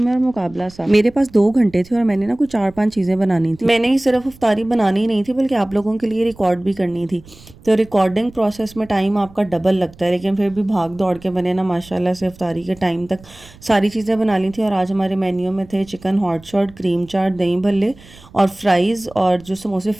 है और मुकाबला सा। मेरे पास 2 घंटे थे और मैंने ना कुछ 4-5 चीज़ें बनानी थी। मैंने ही सिर्फ इफ्तारी बनानी नहीं थी बल्कि आप लोगों के लिए रिकॉर्ड भी करनी थी। तो रिकॉर्डिंग प्रोसेस में टाइम आपका डबल लगता है, लेकिन फिर भी भाग दौड़ के मैंने ना माशाल्लाह से इफ्तारी के टाइम तक सारी चीज़ें बना ली थी। और आज हमारे मेन्यू में थे चिकन हॉट शॉट, क्रीम चाट, दही भल्ले और फ्राइज़, और जो समोसे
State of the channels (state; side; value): noise; right; rumble, 23 dB below the sound